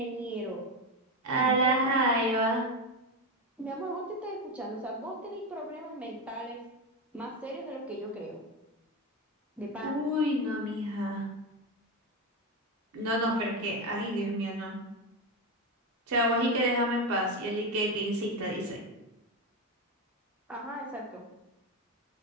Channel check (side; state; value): both; normal; correlation 0.14